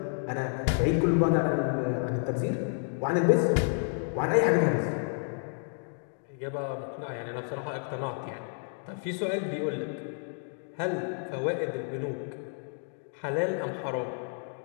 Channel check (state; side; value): silent; right; 57 dB below the other